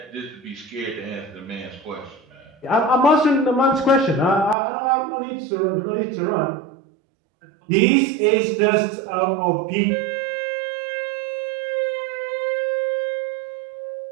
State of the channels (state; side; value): drops out; left; at 4.5 s